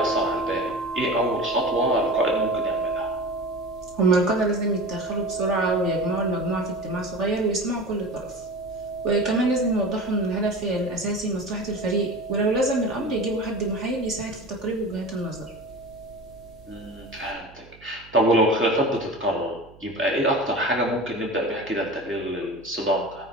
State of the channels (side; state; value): right; noise; hum, 24 dB below the sound